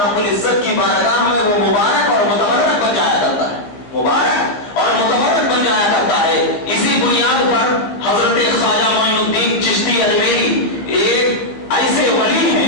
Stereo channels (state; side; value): late; right; 15 ms